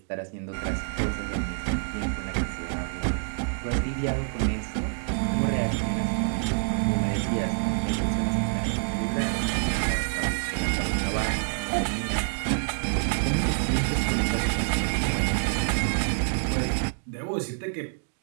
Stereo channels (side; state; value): left; silent; digital silence